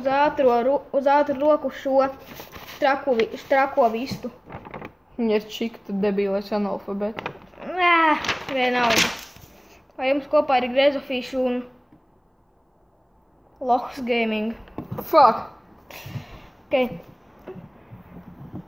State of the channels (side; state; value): both; identical; correlation 1.00